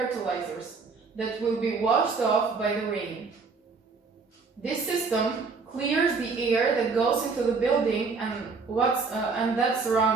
that will be washed off by the rain. This system clears the air that goes into the building and that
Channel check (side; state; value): left; quieter; 4.6 dB